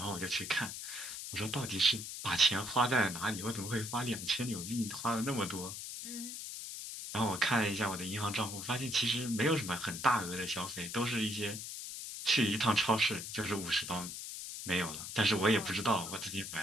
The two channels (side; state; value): left; noise; hiss, 7 dB below the sound